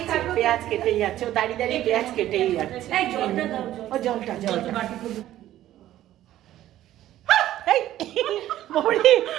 পেঁয়াজ কেটেই যাচ্ছে, ও দাঁড়িয়ে দাঁড়িয়ে পেঁয়াজ কেটেই যাচ্ছে। ও জলটা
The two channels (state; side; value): quieter; left; 13.4 dB